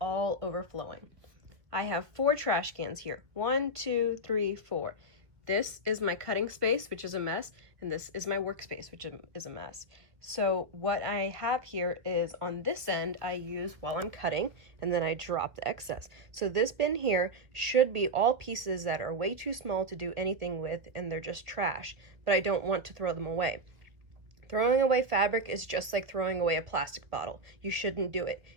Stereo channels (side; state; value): left; late; 1.9 ms